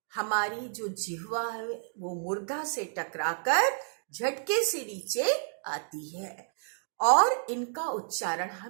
हमारी जो जिह्वा है वो मूर्धा से टकराकर झटके से नीचे आती है, और इनका उच्चारण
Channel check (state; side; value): silent; left; digital silence